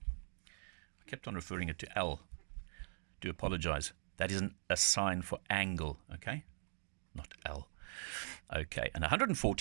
I kept on referring it to L. Do apologize. That isn't a sign for angle, okay? Not L. Okay, and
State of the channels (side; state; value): left; silent; digital silence